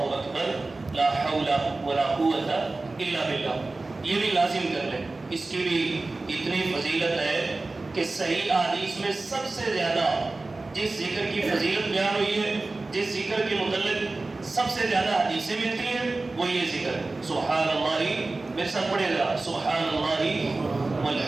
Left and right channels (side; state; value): left; quieter; 3.3 dB